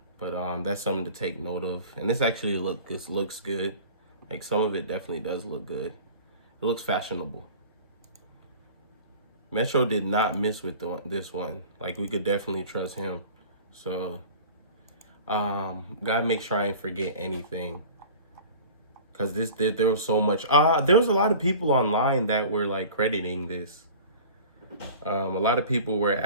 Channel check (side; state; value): both; inverted; correlation -0.42